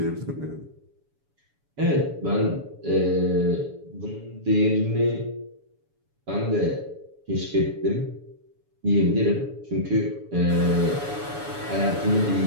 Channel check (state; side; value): late; left; 7.1 ms